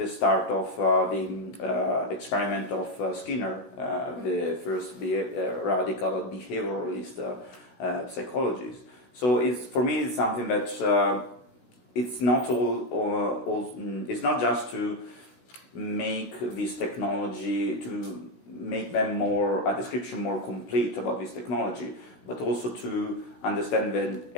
start of the experiment of Skinner, the first radical behavioralist psychologist. So for me it's something that it's not it's not just to make this technology, to make them a description more complete about this technology, but also to understand that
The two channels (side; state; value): right; late; 16 ms